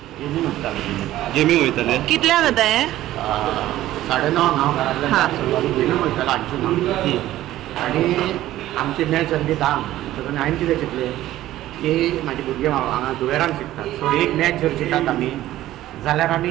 गेमींग वयताले कितल्या जाता हे 9:30 हांव घरांतल्यान गेमींग वयतालो हांची आणि आमची मॅच जाल्ली 10 तातूंत हांवें कितें चिंतलें की म्हाजे भुरगे हांगा दुवेरान शिकतात सो एक मॅच जर चिंतात आमी जाल्यार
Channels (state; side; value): quieter; left; 14.5 dB